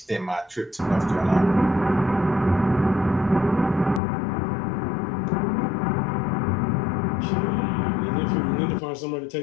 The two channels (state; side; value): drops out; right; at 4.0 s